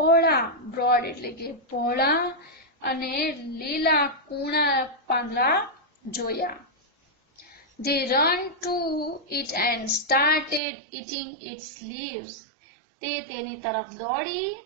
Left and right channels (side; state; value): left; drops out; at 10.6 s